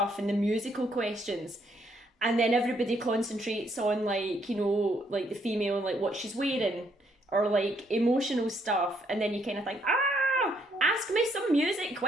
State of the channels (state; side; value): normal; both; correlation 0.71